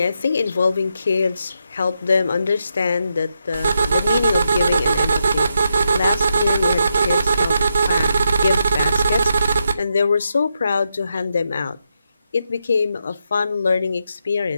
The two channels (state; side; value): inverted; both; correlation -0.83